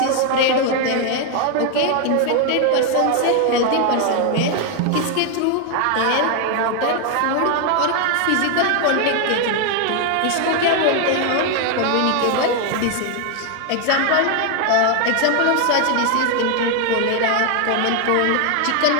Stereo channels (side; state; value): both; different; correlation 0.01